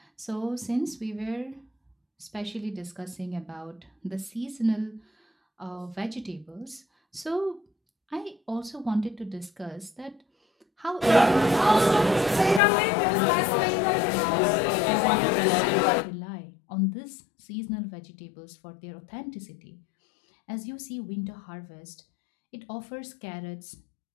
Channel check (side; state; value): right; drops out; at 12.6 s